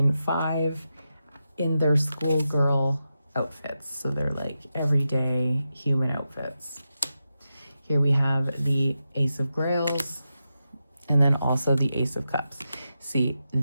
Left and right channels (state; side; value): inverted; both; correlation -0.89